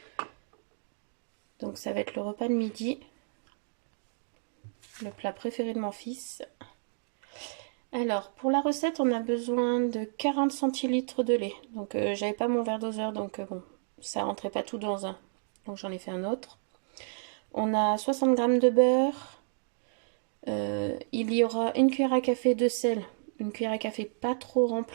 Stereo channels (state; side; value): silent; left; digital silence